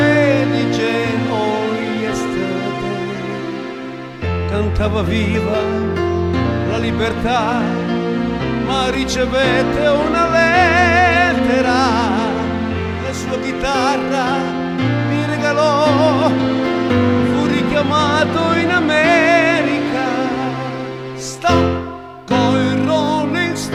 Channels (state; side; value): identical; both; correlation 1.00